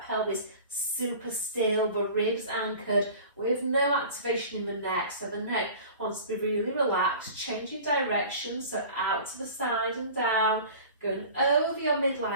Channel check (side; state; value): both; inverted; correlation -0.41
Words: pelvis super still, the ribs anchored, with no activation in the neck. So the neck wants to be really relaxed, changing direction, so out to the side and down, going over your